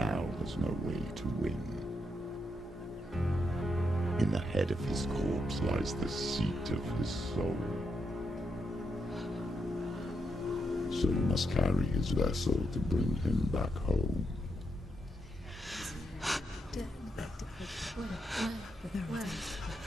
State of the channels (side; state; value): both; normal; correlation 0.81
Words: there's no way to win. In the head of his corpse lies the seat of his soul. So you must carry his vessel to bring him back home.